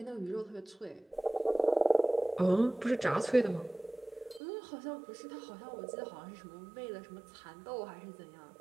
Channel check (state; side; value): drops out; left; at 4.4 s